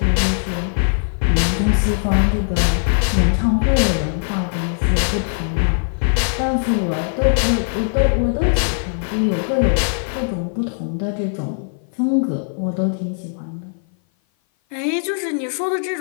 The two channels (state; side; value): silent; right; 56 dB below the other